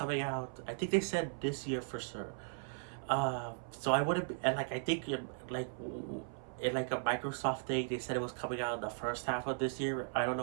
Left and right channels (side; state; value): left; silent; 53 dB below the other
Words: out. I think they said this year for sure. So I wouldn't be, and like I think like in like a Microsoft thing, they said it was coming out in the first half of this year. I don't